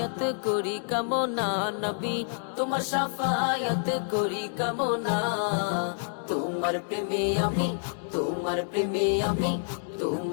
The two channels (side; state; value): right; silent; 59 dB below the other